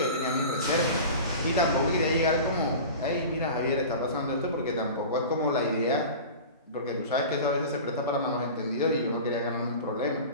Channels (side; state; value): both; inverted; correlation -0.35